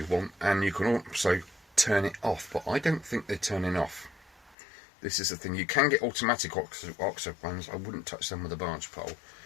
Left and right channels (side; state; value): right; drops out; at 4.5 s